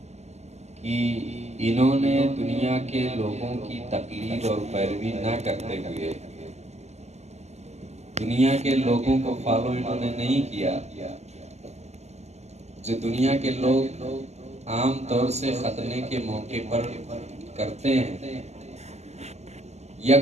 کہ انہوں نے دنیا کے لوگوں کی تقلید اور پیروی نہ کرتے ہوئے، دنیا کے لوگوں کو فالو انہوں نے نہیں کیا جو دنیا کے لوگ عام طور سے ختنے کے موقع پر کرتے ہیں، یا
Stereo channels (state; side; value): late; left; 0.32 ms